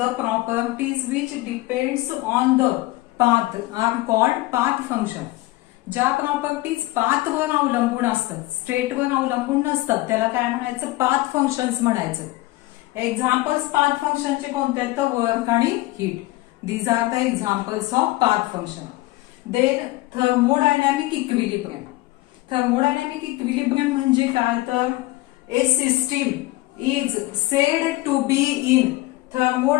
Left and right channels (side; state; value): right; quieter; 19.0 dB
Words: the properties which depends on the path are called path function. ज्या प्रॉपर्टीज पाथवर अवलंबून असतात, स्टेटवर अवलंबून नसतात, त्याला काय म्हणायचं, पाथ फंक्शन्स म्हणायचं. एक्झाम्पल्स पाथ फंक्शनचे कोणते आहेत, तर वर्क आणि heat. These are the examples of path function. Then thermodynamic equilibrium. Thermodynamic equilibrium म्हणजे काय, तर a system is said to be in